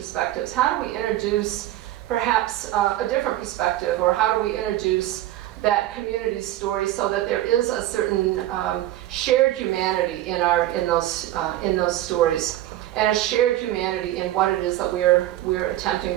How do we introduce perhaps a different perspective, or how do we introduce that community story so that there is a certain shared humanity in those stories, and a shared humanity in what it is that we're attempting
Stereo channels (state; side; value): quieter; left; 14.4 dB